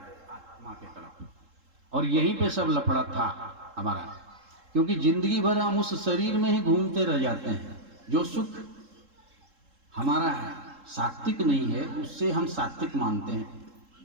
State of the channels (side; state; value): left; late; 3.7 ms